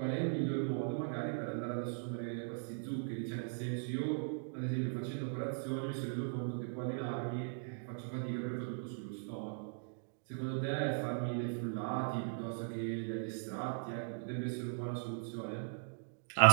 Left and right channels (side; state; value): left; silent; digital silence